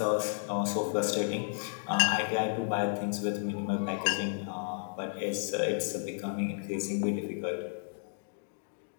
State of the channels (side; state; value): right; silent; digital silence